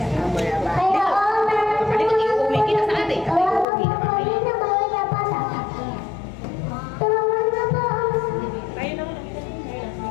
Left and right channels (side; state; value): right; drops out; at 3.7 s